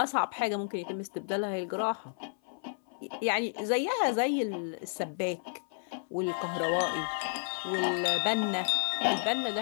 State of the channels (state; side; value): silent; right; 57 dB below the other